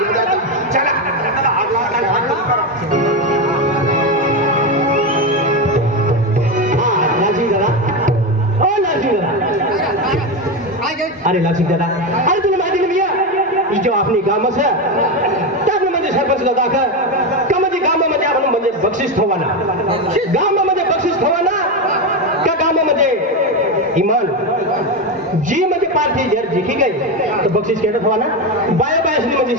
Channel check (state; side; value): normal; both; correlation 0.13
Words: चला अरे लासिक दादा अरे तुला माहिती नाही भैया जो आपली गामच है त्यामुळे म्हणजे सरपंच दादा का म्हणजे गावामध्ये आपण म्हणजे बक्षीस ठेवाना गावामध्ये बक्षीस ठेवाना का गावामध्ये इमान जी म्हणजे पार्टी जर जिंकी गई तो बक्षीस केलं ठेवाना बाया बायासनी म्हणजे